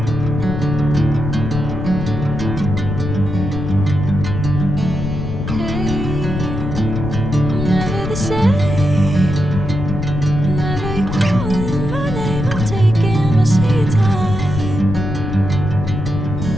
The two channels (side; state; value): left; noise; rumble, 4 dB below the sound